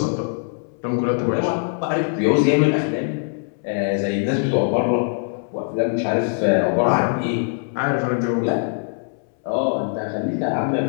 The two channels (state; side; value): silent; right; 64 dB below the other